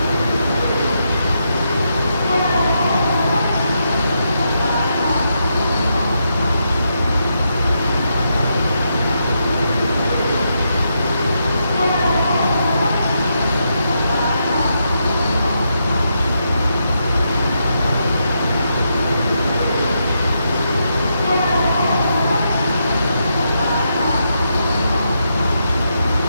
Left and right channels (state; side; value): inverted; both; correlation -0.82